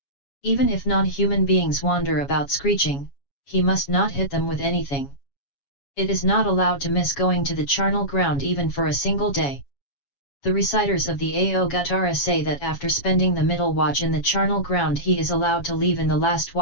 Even if non-human beings wander about screeching, he must not hit them with anything. It is not allowed to miss going to the charnel ground even for a single day. The reciters of the Aòguttara say that after spending the middle watch in the charnel ground he is allowed to leave in the last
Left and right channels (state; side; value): late; right; 7.2 ms